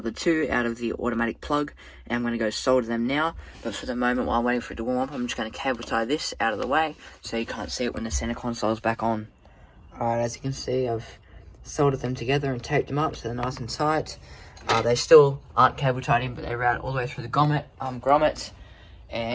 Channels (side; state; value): both; identical; correlation 1.00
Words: 2 out of the automatic plug, and I'm going to go solder them now. But for the moment, while I'm waiting for it to warm up, I'm just going to cable tie this out of the way, so you can't see it when the center console is back on. Alright, as you can see, I've soldered them together and taped them up so they're nice and tight. They still aren't cable tied in, but they route all the way through the grommet